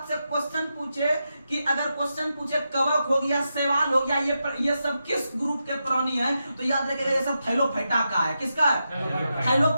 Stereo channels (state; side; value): inverted; both; correlation -0.87